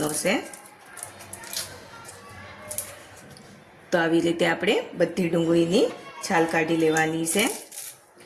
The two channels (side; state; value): both; identical; correlation 1.00